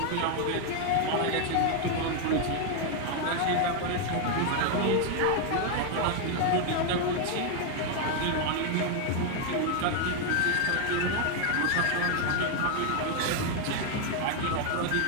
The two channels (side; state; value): both; different; correlation 0.01